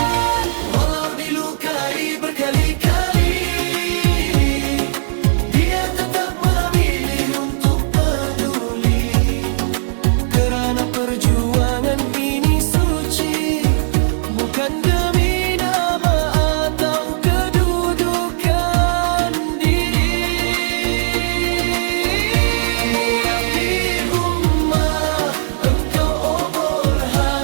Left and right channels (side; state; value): left; silent; digital silence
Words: Walau dilukai berkali-kali, dia tetap memilih untuk peduli. Kerana perjuangan ini suci, bukan demi nama atau kedudukan diri. Murabbi ummah,